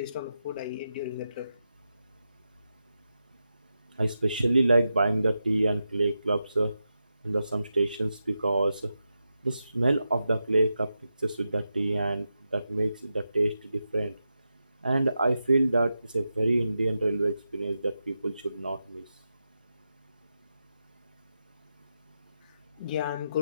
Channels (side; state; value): both; inverted; correlation -0.88